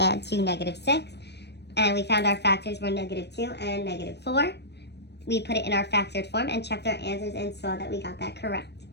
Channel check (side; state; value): right; late; 0.49 ms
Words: to negative 6. And we found our factors were negative 2 and negative 4. We put it in our factored form and checked our answers and saw that we got that correct.